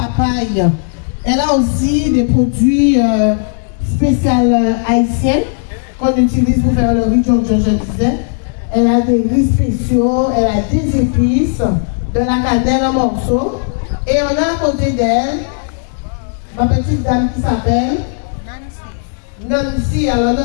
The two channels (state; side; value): silent; right; digital silence